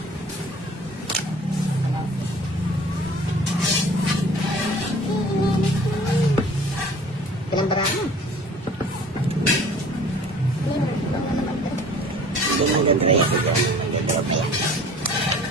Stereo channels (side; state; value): both; normal; correlation 0.48